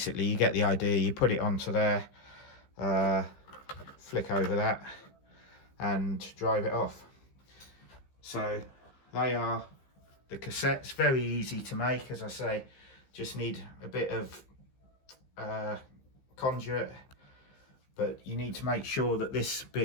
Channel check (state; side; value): late; right; 15 ms